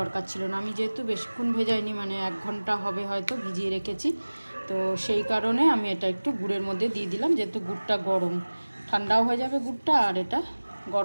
ছিল না। আমি যেহেতু বেশিক্ষণ ভেজাইনি, মানে 1 ঘন্টা হবে হয়তো ভিজিয়ে রেখেছি, তো সেই কারণে আমি এটা একটু গুড়ের মধ্যে দিয়ে দিলাম। যেহেতু গুড়টা গরম, ঠান্ডাও হয়ে যাবে গুড়টা, আর এটা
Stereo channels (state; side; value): inverted; both; correlation -1.00